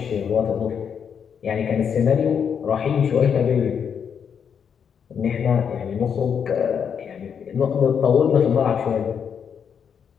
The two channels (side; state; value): right; quieter; 7.4 dB